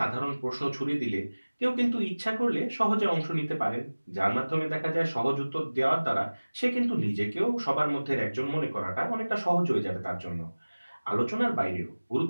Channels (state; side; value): inverted; both; correlation -1.00